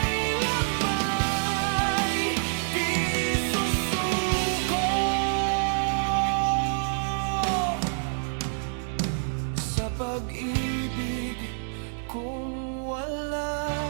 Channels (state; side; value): silent; left; digital silence